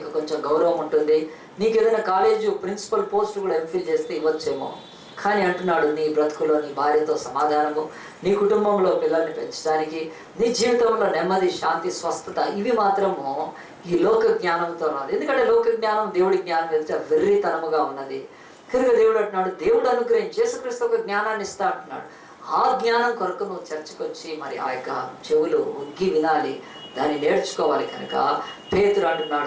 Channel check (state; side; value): identical; both; correlation 1.00